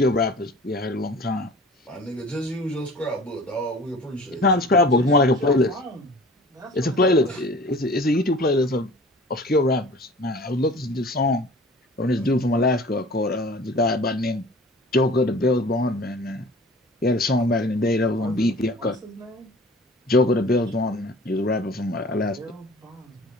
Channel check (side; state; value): both; normal; correlation 0.44